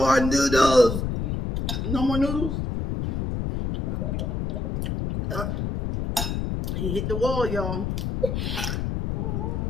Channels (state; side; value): noise; left; rumble, 2 dB below the sound